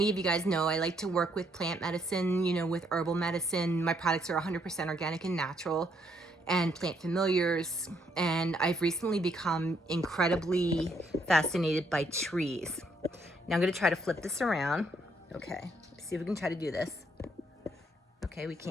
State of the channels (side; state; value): both; normal; correlation 0.72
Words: of you guys know, I like to work with plant medicine, with herbal medicine. My products are 100% organic and natural, and plant familiars. And I've recently become incredibly fascinated by trees. Now I'm gonna try to flip this around. Okay, let's see if we can try to do this. Okay, we